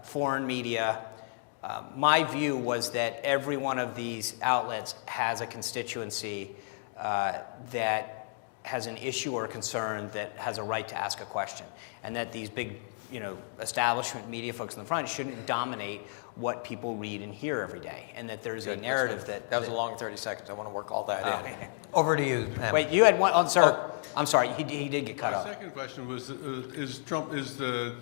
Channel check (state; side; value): silent; right; digital silence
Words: foreign media. My view was that every one of these outlets has a constituency that has an issue or concern that has a right to ask a question, and that these big, establishment media folks in the front shouldn't dominate what people read and hear every day, and that there's a narrative that... That was a long 30 seconds. I want to work all that in. Over to you, Pam. Wait, you had one... Oh, sir. I'm sorry. He did get cut My off. second question was, is